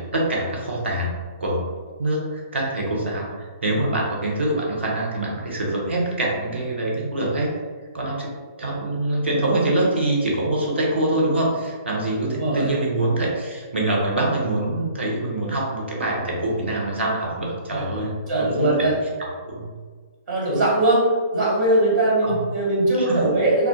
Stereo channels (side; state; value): both; inverted; correlation -0.50